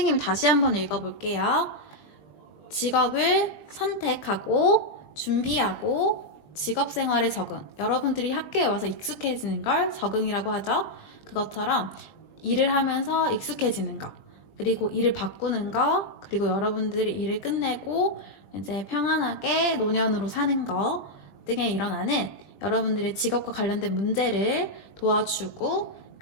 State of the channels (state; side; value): late; right; 20 ms